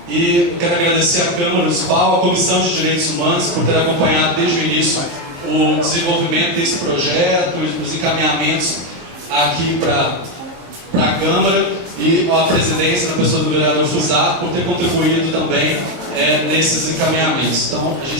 E eu quero agradecer à Câmara Municipal, à Comissão de Direitos Humanos, por ter acompanhado desde o início o desenvolvimento desse projeto, os encaminhamentos aqui para a Câmara, e a presidência, na pessoa do vereador Fusato, por ter contribuído também nesses encaminhamentos. Então, a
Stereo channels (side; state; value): left; late; 23 ms